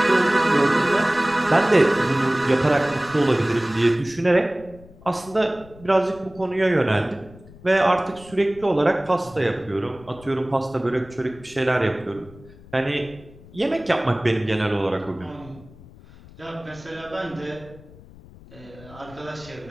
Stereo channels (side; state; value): left; noise; rumble, 21 dB below the sound